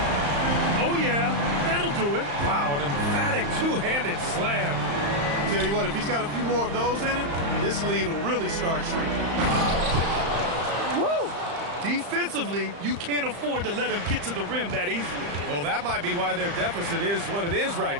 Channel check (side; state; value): left; late; 35 ms